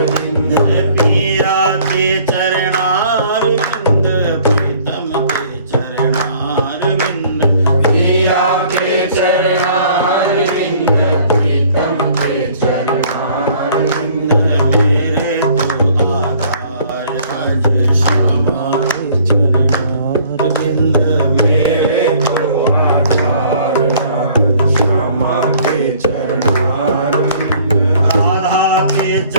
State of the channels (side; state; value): both; inverted; correlation -0.56